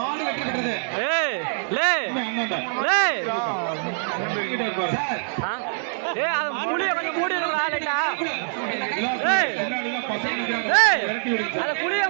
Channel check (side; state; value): left; silent; digital silence